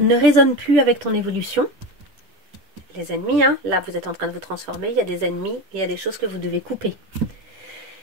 résonnent plus avec ton évolution. Les ennemis, hein, là vous êtes en train de vous transformer, il y a des ennemis et il y a des choses que vous devez couper.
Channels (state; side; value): late; left; 10 ms